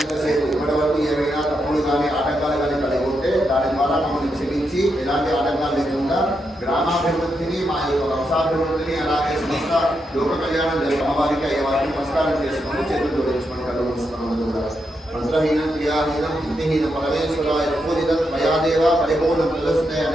ఇప్పటి వరకు ఏమైనా తప్పులు కానీ ఆటంకాలు కానీ కలిగి ఉంటే దాని ద్వారా మమ్మల్ని క్షమించి ఎలాంటి ఆటంకాలు లేకుండా గ్రామాభివృద్ధిని మా యొక్క వంశాభివృద్ధిని అలాగే సంస్థ లోక కళ్యాణం జరిగే అమ్మవారికి అయ్యేవారికి నమస్కారం చేసుకొని చేతులు జోడించుకొని కళ్ళు మూసుకున్నాం కూడా మంత్రహీనం క్రియాహీనం బుద్ధిహీనం పరమేశ్వరాయ పూజితం మయాదేవ పరిపూర్ణ ప్రదర్శిత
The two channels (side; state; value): both; normal; correlation 0.83